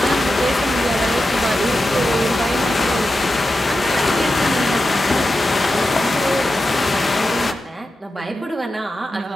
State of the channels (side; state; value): both; normal; correlation 0.91